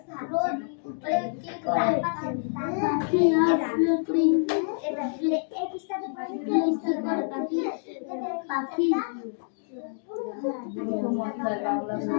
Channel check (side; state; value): right; silent; digital silence